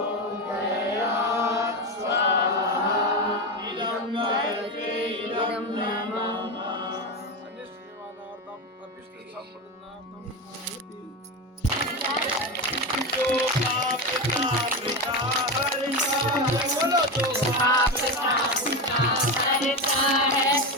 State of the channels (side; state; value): both; normal; correlation 0.17